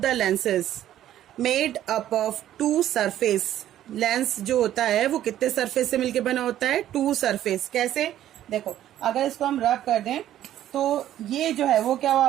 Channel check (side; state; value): left; quieter; 12.2 dB